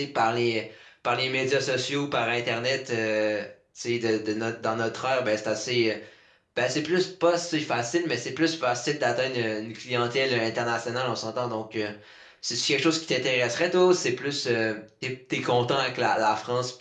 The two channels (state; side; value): identical; both; correlation 1.00